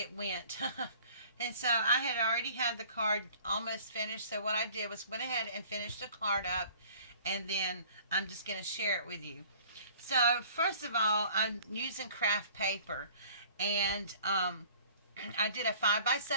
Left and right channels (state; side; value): inverted; both; correlation -0.50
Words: went. And so I had already had the card almost finished, so what I did was went ahead and finished the card up, and then I'm just going to share it with you. So first of all, I'm using craft paper, and I did a